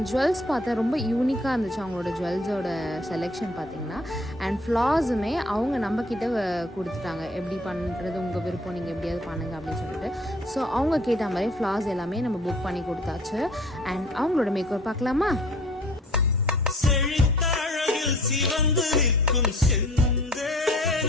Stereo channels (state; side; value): normal; both; correlation 0.52